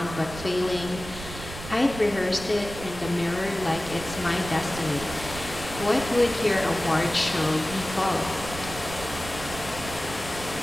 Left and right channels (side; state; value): right; noise; rumble, 11 dB below the sound